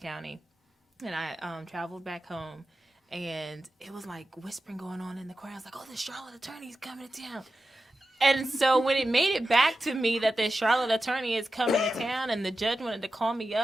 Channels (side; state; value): both; normal; correlation 0.92